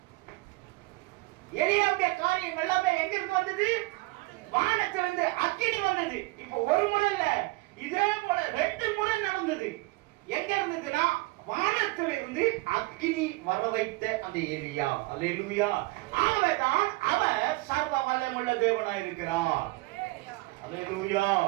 எலியாவுடைய காரியம் எல்லாமே எங்க இருந்து வந்தது? வானத்திலிருந்து அக்கினி வந்தது. இப்போ ஒரு முறை இல்ல, இதே போல 2 முறை நடந்தது. எங்க இருந்ததுன்னா வானத்திலிருந்து அக்கினி வர வைத்த அந்த எலியா. அல்லேலூயா. அவதான் அவர் சர்வ வல்லமையுள்ள தேவனாய் இருக்கிறார். அல்லேலூயா.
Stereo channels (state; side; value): quieter; left; 22.9 dB